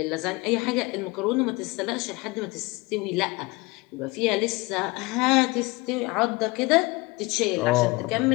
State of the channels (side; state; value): right; quieter; 24.3 dB